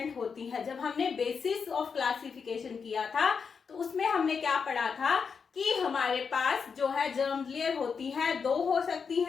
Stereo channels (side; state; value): right; quieter; 5.9 dB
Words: होती है। जब हमने बेसिस ऑफ क्लासिफिकेशन किया था तो उसमें हमने क्या पढ़ा था कि हमारे पास जो है जर्म लेयर होती है, 2 हो सकती